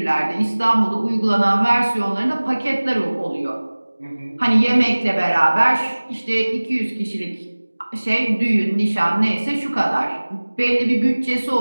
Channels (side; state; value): both; inverted; correlation -1.00